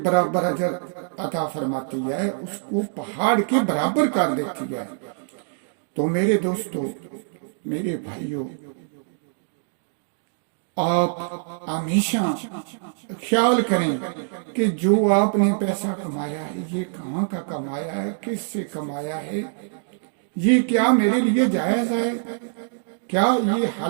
برابر اجر عطا فرماتی ہے، اس کو پہاڑ کے برابر کر دیتی ہے. تو میرے دوستو، میرے بھائیوں، آپ ہمیشہ خیال کریں کہ جو آپ نے پیسہ کمایا ہے یہ کہاں کا کمایا ہے، کس سے کمایا ہے، یہ کیا میرے لیے جائز ہے، کیا یہ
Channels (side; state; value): left; silent; digital silence